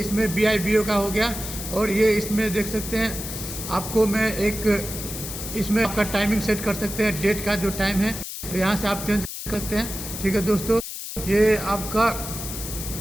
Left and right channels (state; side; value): noise; left; hiss, 8 dB below the sound